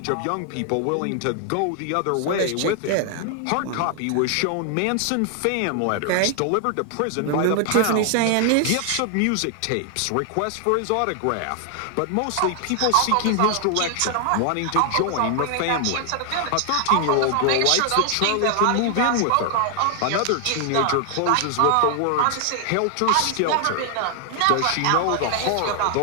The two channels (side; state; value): both; different; correlation 0.00